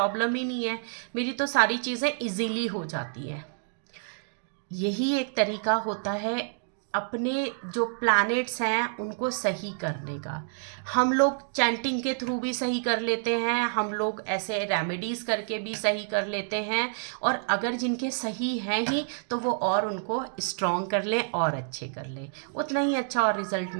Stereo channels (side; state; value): left; silent; digital silence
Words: ही नहीं है, मेरी तो सारी चीज़ें इजीली हो जाती हैं। यही एक तरीका होता है अपने जो प्लैनेट्स हैं उनको सही करने का। हम लोग चैंटिंग के थ्रू भी सही कर लेते हैं, हम लोग ऐसे रेमेडीज़ करके भी सही कर लेते हैं, और अगर जिनके सही हैं ही तो वो और उनको स्ट्रॉन्ग कर लें और अच्छे कर लें, उतना ही अच्छा और रिजल्ट